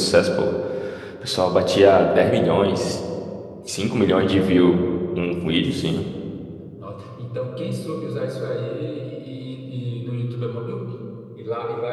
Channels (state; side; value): identical; both; correlation 1.00